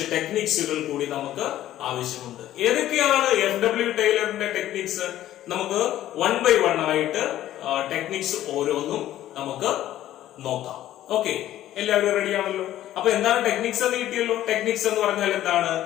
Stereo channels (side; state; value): right; quieter; 13.1 dB